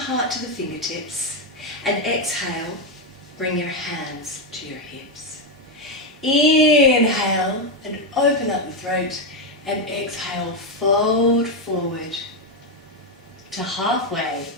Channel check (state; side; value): normal; both; correlation 0.06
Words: to the fingertips, and exhale, bring your hands to your hips. Inhale and open up the throat, and exhale, fold forward to halfway,